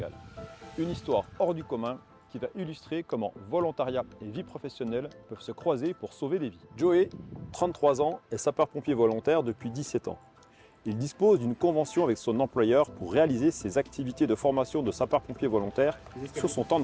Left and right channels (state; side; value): identical; both; correlation 1.00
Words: Une histoire hors du commun qui va illustrer comment volontariat et vie professionnelle peuvent se croiser pour sauver des vies. Joey, 33 ans, est sapeur-pompier volontaire depuis 17 ans. Il dispose d'une convention avec son employeur pour réaliser ses activités de formation de sapeur-pompier volontaire sur son temps